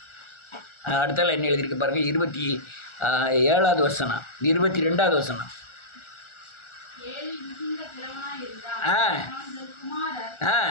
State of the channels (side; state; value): right; late; 1.4 ms